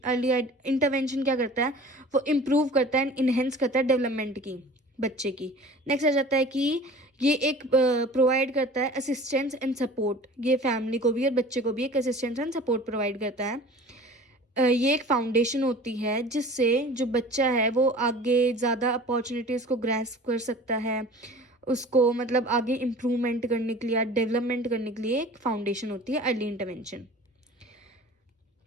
इंटरवेंशन क्या करता है, वो इम्प्रूव करता है एंड इन्हेंस करता है डेवलपमेंट की, बच्चे की। नेक्स्ट आ जाता है कि ये एक प्रोवाइड करता है असिस्टेंस एंड सपोर्ट, ये फैमिली को भी और बच्चे को भी एक असिस्टेंस एंड सपोर्ट प्रोवाइड करता है। ये एक फाउंडेशन होती है जिससे जो बच्चा है वो आगे ज़्यादा अपॉर्चुनिटीज़ को ग्रैस्प कर सकता है, उसको मतलब आगे इम्प्रूवमेंट करने के लिए, डेवलपमेंट करने के लिए एक फाउंडेशन होती है अर्ली इंटरवेंशन।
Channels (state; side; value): normal; both; correlation 0.42